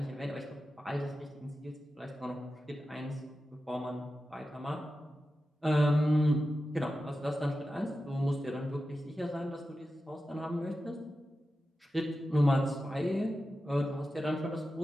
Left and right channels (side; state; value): both; normal; correlation 0.92